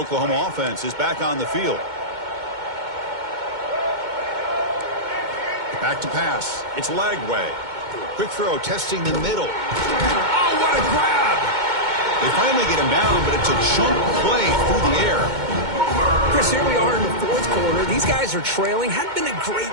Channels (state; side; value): late; left; 2.2 ms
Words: offense is back on the field. Back to pass. It's Lagway. Quick throw, testing the middle. Oh, what a grab! They finally get him down, but it's a chunk play through the air. Chris, here we are in the fourth quarter. These guys are trailing. Hadn't been a great